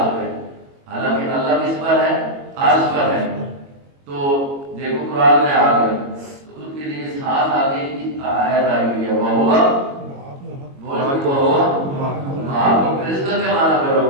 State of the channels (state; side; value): late; left; 22 ms